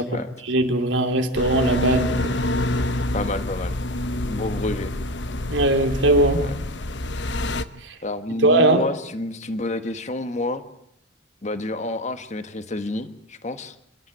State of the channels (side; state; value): both; normal; correlation 0.18